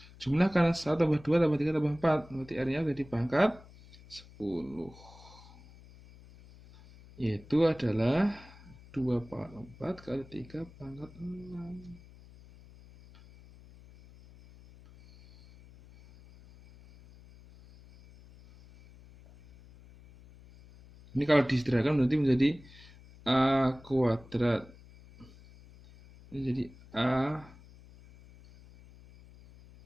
Jumlah karena 1 tambah 2 tambah 3 tambah 4. Berarti R nya jadi pangkat 10. Yaitu adalah 2/4 kali 3/6. Ini kalau disederhanakan nanti menjadi A kuadrat. Ini jadi A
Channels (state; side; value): noise; left; hum, 22 dB below the sound